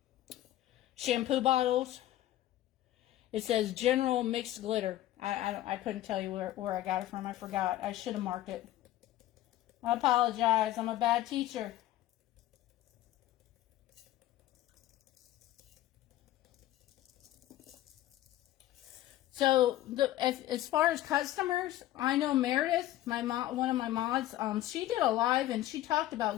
shampoo bottles. It says General Mixed Glitter. I couldn't tell you where I got it from. I forgot. I should have marked it. I apologize. I'm a bad teacher. So as far as customers, I know Meredith, one of my mods, she did a live and she talked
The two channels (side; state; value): right; quieter; 14.4 dB